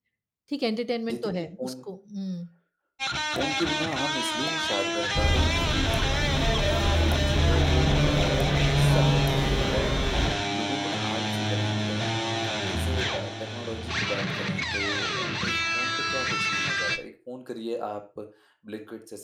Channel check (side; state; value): both; identical; correlation 1.00